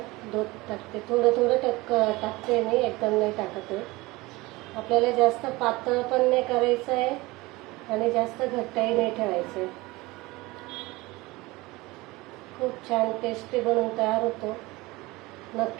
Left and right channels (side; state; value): left; quieter; 21.6 dB